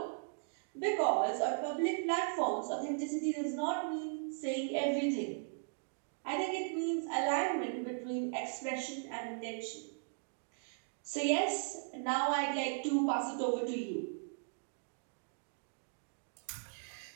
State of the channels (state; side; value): silent; left; digital silence